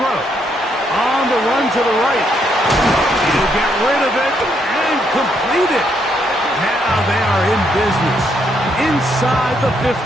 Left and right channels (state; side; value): normal; both; correlation 0.75